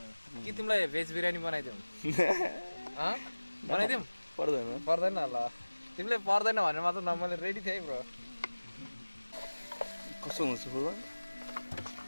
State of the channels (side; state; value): both; inverted; correlation -1.00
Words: कि तिमीलाई भेज बिरयानी बनाइदिउँ बनाइदिउँ पर्दैन पर्दैन ल तिमीले पर्दैन भनेर मात्र न मैले रेडी थिएँ ब्रो कस्तो हुन्छ फुर्बा